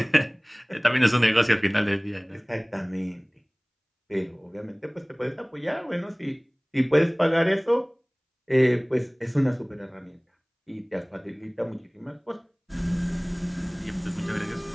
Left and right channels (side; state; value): both; identical; correlation 1.00